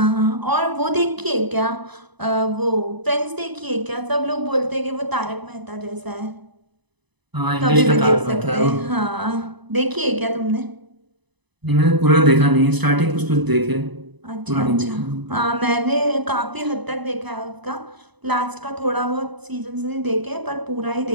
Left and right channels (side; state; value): left; late; 1.0 ms